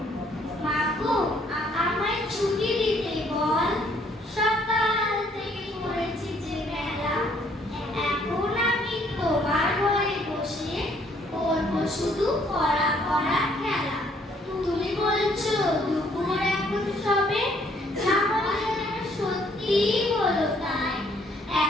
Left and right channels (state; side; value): normal; both; correlation 0.65